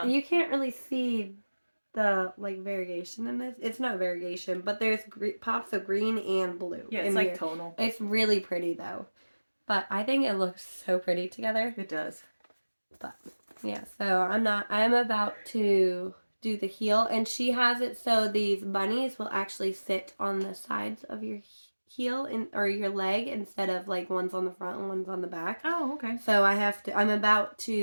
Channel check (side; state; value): both; inverted; correlation -1.00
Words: you can't really see the like variation in this. It's not variegation, but there's pops of green and blue. Yeah, it's like tonal. It's really pretty though. But I think it looks so pretty together. It does. But yeah, so I'm about to do the heel, and she has it so these bunnies will actually sit on the sides of your heel or your leg instead of like one's on the front and one's on the back. Oh, okay. So I'm about